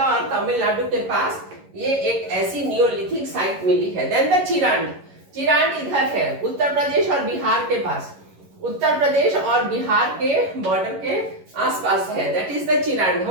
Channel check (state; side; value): late; left; 11 ms